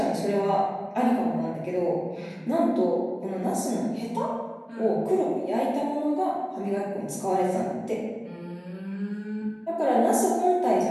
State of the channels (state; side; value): identical; both; correlation 1.00